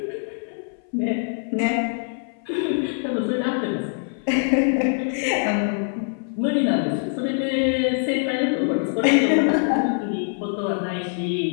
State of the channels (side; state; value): right; silent; 61 dB below the other